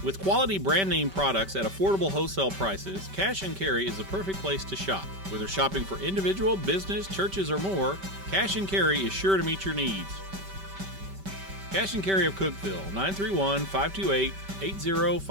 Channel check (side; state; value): left; late; 5.2 ms